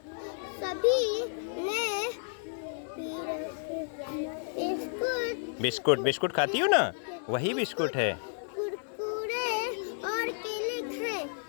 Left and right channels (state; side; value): silent; right; digital silence